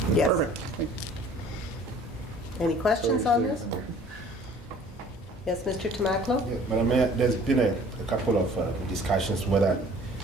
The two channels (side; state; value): both; normal; correlation 0.51